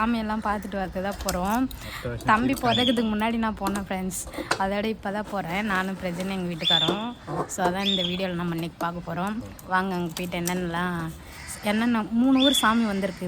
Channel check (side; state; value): both; identical; correlation 1.00